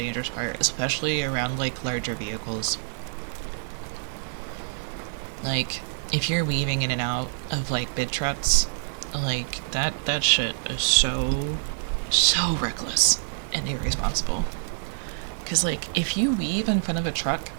part, especially around like larger vehicles. Like, if you're weaving in and out of like big trucks, like that shit is so reckless and irresponsible. Because like if you weave in front of a truck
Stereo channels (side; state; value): left; silent; digital silence